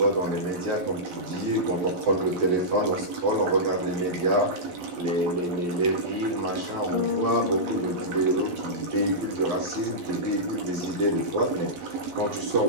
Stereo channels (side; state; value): left; late; 11 ms